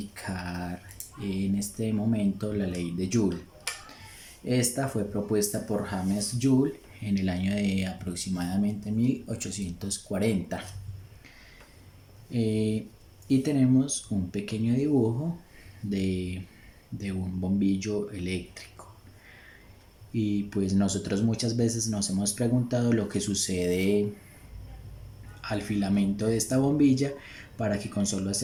en este momento la ley de Joule. Esta fue propuesta por James Joule en el año de aproximadamente 1840. Y tenemos un pequeño dibujo de un bombillo eléctrico. Y pues nosotros muchas veces nos hemos preguntado lo que sucede al filamento de esta bombilla para que con solo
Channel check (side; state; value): both; identical; correlation 1.00